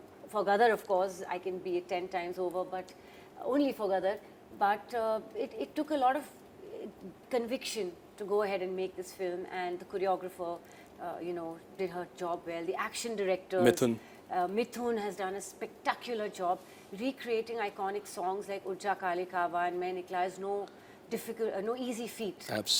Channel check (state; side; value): identical; both; correlation 1.00